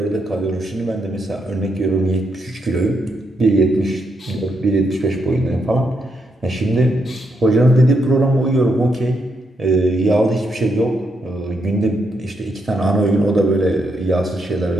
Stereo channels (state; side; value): normal; both; correlation 0.80